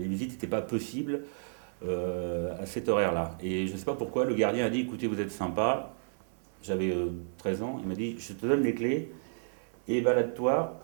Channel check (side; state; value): left; silent; 57 dB below the other